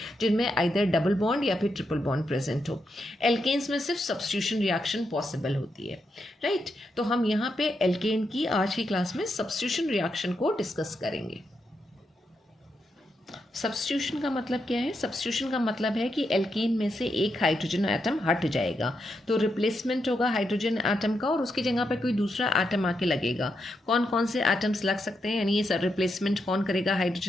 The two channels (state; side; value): normal; both; correlation 0.83